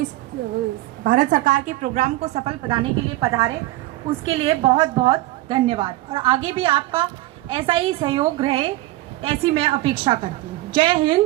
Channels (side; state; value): left; quieter; 17.7 dB